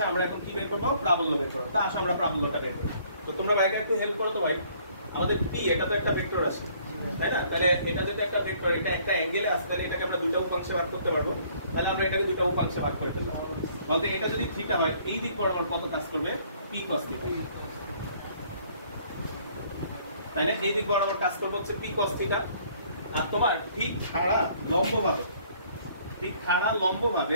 আমরা এখন কি বের করবো? প্রাবল্য বের করবো। তা আসো আমরা প্রাবল্যটা বের করি। তো তোমরা ভাইকে একটু হেল্প করো তো ভাই। আমাদের পি, এটা তো একটা ভেক্টর আছে, তাই না? তাহলে এটা যেটা একটা ভেক্টর, এটা একটা অ্যাঙ্গেলে আছে, তাহলে এটাকে আমরা দুটো উপাংশে ভাগ করতে পারবো। তাহলে আমরা এটাকে দুটো উপাংশে ভাগ করে ফেললাম। বলতে এটা যদি থিটা হয়, এই দিক বরাবর কত কাজ করবে? P cos theta. তাই না? এই দিক বরাবর কাজ করবে হচ্ছে পি কস থিটা। আর তোমার ঠিক খাড়া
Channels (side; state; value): both; inverted; correlation -0.61